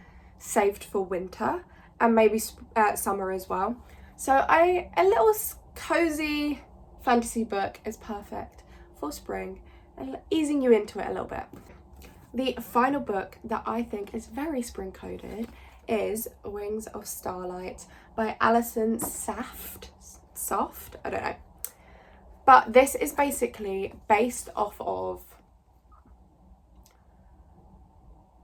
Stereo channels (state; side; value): identical; both; correlation 1.00